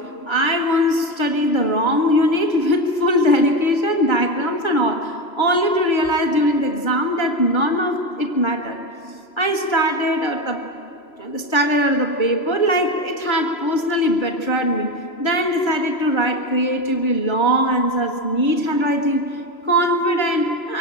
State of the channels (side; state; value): right; late; 3.0 ms